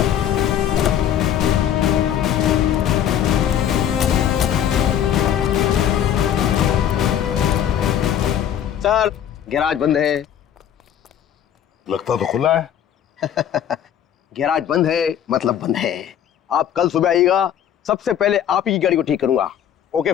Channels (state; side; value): quieter; right; 9.9 dB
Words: सर, गैराज बंद है। लगता तो खुला है। गैराज बंद है मतलब बंद है। आप कल सुबह आइएगा, सबसे पहले आप ही की गाड़ी को ठीक करूंगा। Okay